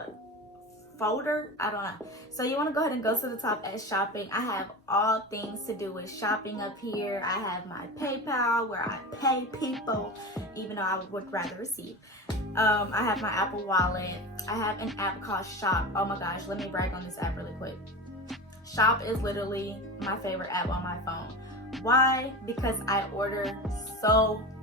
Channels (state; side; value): normal; both; correlation 0.28